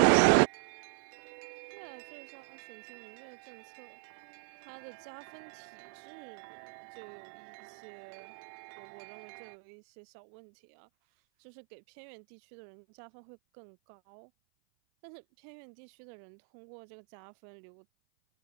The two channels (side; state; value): left; silent; 52 dB below the other